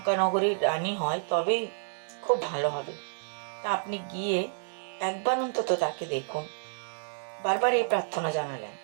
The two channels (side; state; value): left; silent; digital silence